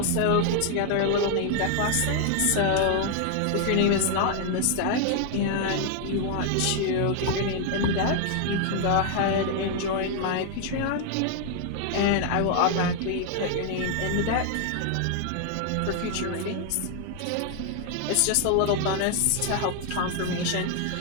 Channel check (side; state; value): both; different; correlation 0.00